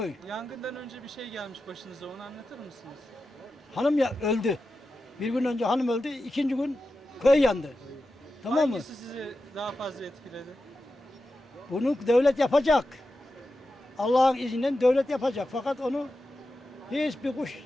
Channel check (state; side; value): normal; both; correlation 0.91